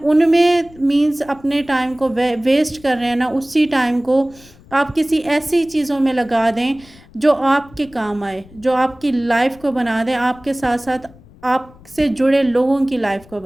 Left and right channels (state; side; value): noise; left; rumble, 24 dB below the sound